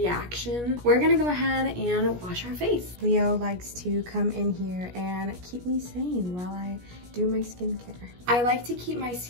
We're gonna go ahead and wash our face. Leo likes to come in here and keep me sane while I do my skincare. I like to keep my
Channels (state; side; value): late; left; 17 ms